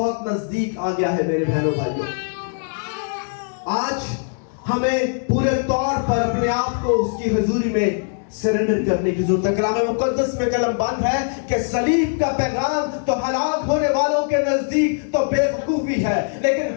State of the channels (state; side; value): silent; right; 64 dB below the other